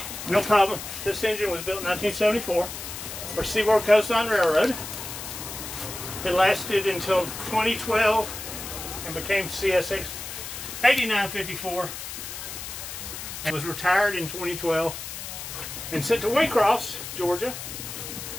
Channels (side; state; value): left; noise; hiss, 9 dB below the sound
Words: No problem. This engine was built in 1974 for Seaboard Coastline Railroad. It lasted until 2012 and became CSX 8954. It was retired in 2012 and sent to Waycross, Georgia,